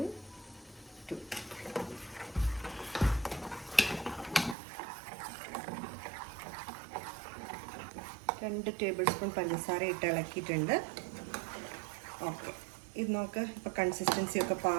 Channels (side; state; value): left; drops out; at 4.5 s